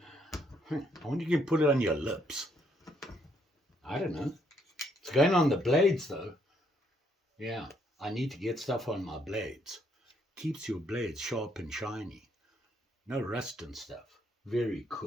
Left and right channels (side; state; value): both; normal; correlation 0.71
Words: I wonder if you can put it on your lips. I don't know. It's going on the blades though. Yeah, I need to get stuff on my blades. Keeps your blades sharp and shiny. No rust and stuff. Very